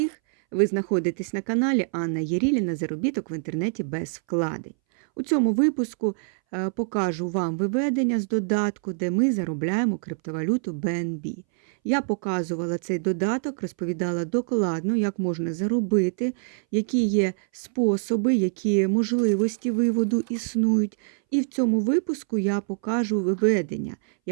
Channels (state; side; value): silent; left; 61 dB below the other